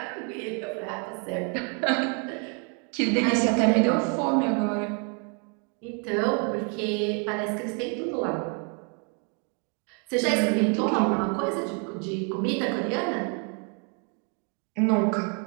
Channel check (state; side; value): quieter; left; 37.6 dB